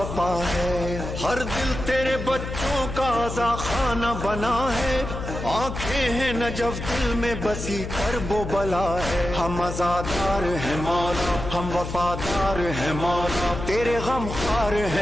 ہے ہر دل تیرے بچوں کا عزا خانہ بنا ہے آنکھیں ہیں نجف دل میں بسی کرب و بلا ہے ہم عزادار ہیں مولا ہم وفادار ہیں مولا تیرے غم خوار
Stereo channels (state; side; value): noise; left; hum, 7 dB below the sound